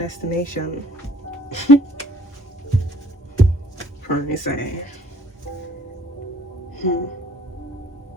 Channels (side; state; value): both; normal; correlation 0.57